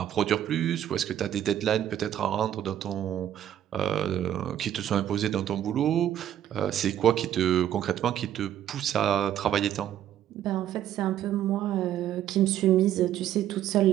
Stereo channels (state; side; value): quieter; left; 11.0 dB